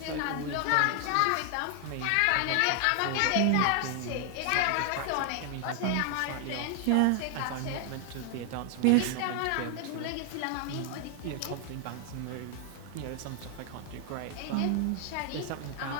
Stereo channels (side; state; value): both; different; correlation 0.00